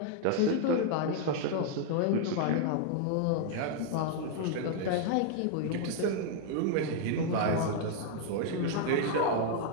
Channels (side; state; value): both; different; correlation 0.00